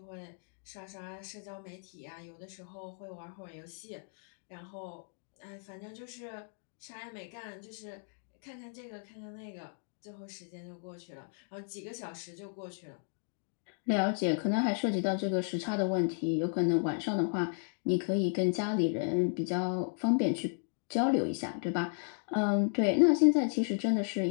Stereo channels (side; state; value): right; silent; 55 dB below the other